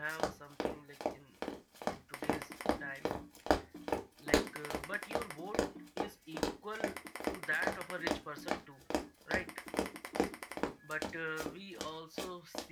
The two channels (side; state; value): both; identical; correlation 1.00